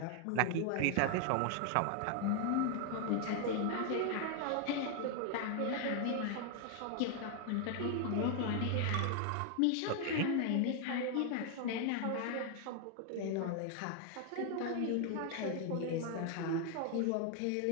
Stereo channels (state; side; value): different; both; correlation 0.00